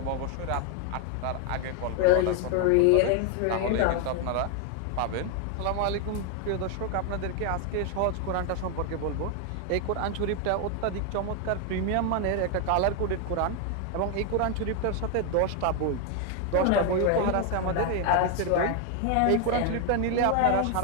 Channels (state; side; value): different; both; correlation 0.01